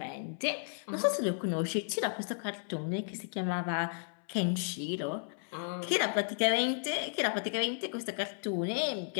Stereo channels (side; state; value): right; silent; 55 dB below the other